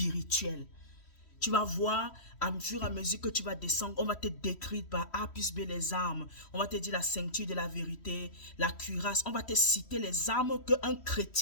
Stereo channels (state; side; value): late; right; 3.1 ms